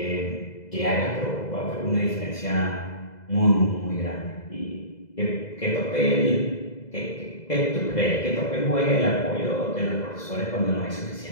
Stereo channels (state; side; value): late; right; 2.0 ms